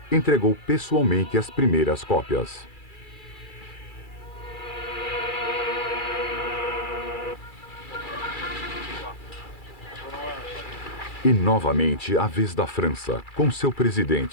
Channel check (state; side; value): late; right; 2.3 ms